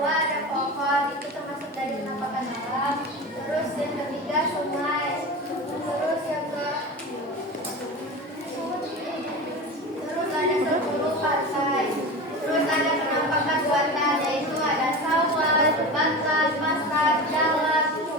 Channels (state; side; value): normal; both; correlation 0.29